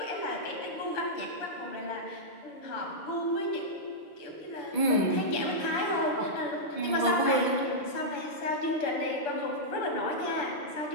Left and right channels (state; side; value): late; right; 6.1 ms